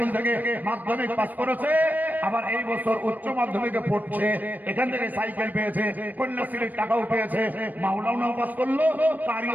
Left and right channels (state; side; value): late; left; 0.084 ms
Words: থেকে মাধ্যমিক পাস করেছে, আবার এই বছর উচ্চ মাধ্যমিকে পড়ছে, এখান থেকে সাইকেল পেয়েছে, কন্যাশ্রীর টাকাও পেয়েছে, মাওলানাও পাস করলো,